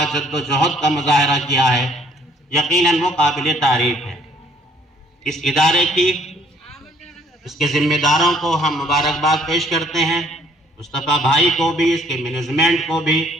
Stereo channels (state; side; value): normal; both; correlation 0.61